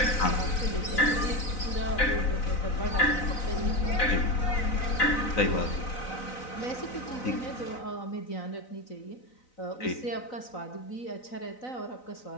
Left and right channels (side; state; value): right; late; 4.0 ms